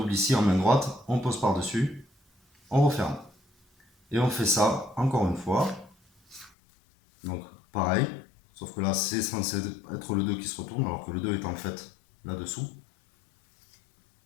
ici en main droite, on pose par-dessus, on referme. Et on fait ça encore une fois. Donc pareil, sauf que là c'est censé être le 2 qui se retourne, alors que le 2 est en fait là-dessous.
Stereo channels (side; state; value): right; drops out; at 6.5 s